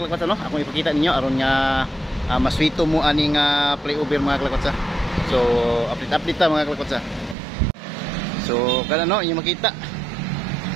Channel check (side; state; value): left; drops out; at 7.4 s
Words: kalakot, no? Ako ipakita ninyo aron nga maswito mo aning flyover mga kalakot. So update ta mga kalakot. So kana, no, inyo makita